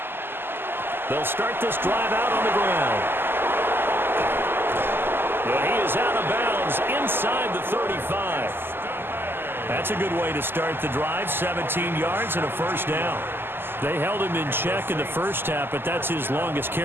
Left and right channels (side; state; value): left; late; 0.10 ms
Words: They'll start this drive out on the ground. Well, he is out of bounds inside the 35. That's a good way to start the drive, 17 yards and a first down. They held him in check in the first half, but that's his longest